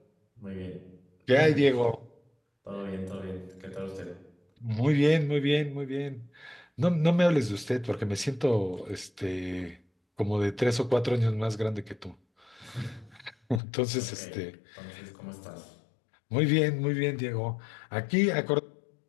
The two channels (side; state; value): right; drops out; at 13.6 s